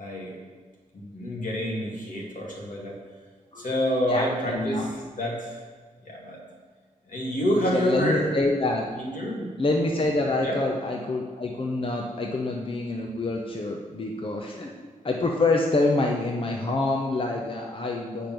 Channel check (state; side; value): normal; both; correlation 0.68